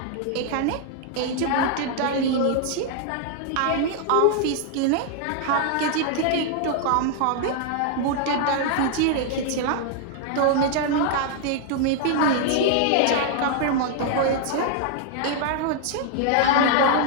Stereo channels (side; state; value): both; different; correlation 0.00